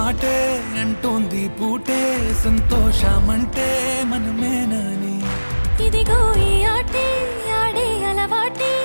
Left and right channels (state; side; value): inverted; both; correlation -1.00